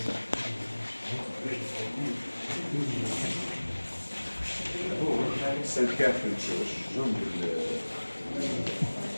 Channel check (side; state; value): both; inverted; correlation -1.00